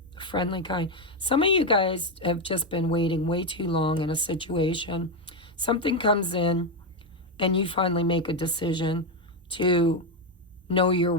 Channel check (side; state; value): both; normal; correlation 0.07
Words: the friendly kind. Some of you guys have just been waiting way too long in a situation. Something comes in and you finally make a decision to know your